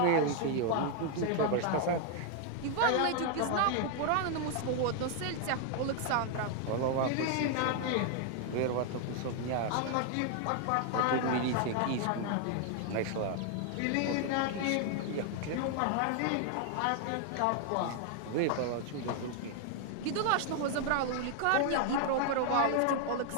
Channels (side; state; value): both; different; correlation 0.00